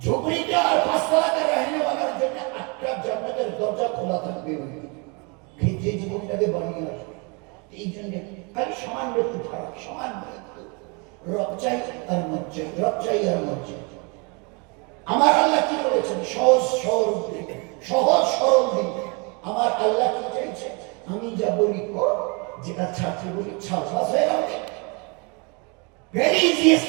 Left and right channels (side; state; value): left; quieter; 31.9 dB